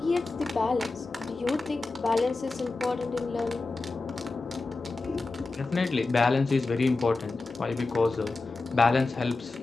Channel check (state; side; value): quieter; right; 3.6 dB